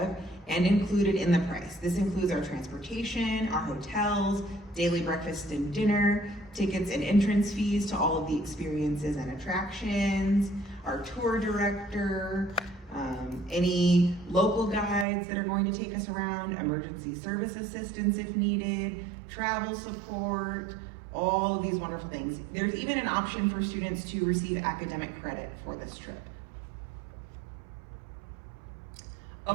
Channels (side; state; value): left; drops out; at 15.1 s